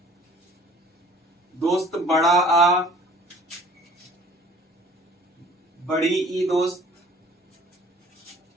दोस्त। बड़ा आ, बड़ी ई दोस्त,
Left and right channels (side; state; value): both; normal; correlation 0.52